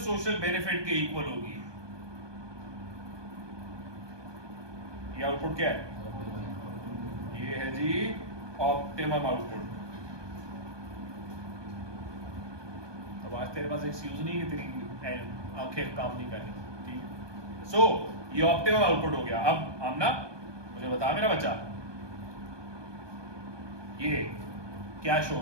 benefit के इक्वल होगी, ये आउटपुट क्या है? ये है जी ऑप्टिमम आउटपुट। अब आज तेरे पास एक्सक्यूज नहीं है, तेरी आंखें काम नहीं कर रही। ठीक, सो ये ऑप्टिमम आउटपुट हो गया। अब आमना मुझे बता मेरा बच्चा, ये क्या शो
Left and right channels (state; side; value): late; left; 1.2 ms